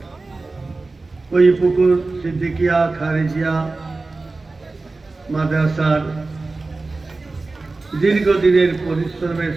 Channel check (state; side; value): quieter; left; 3.5 dB